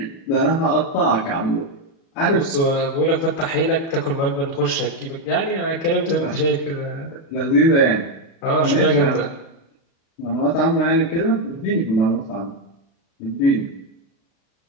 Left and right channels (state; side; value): late; right; 36 ms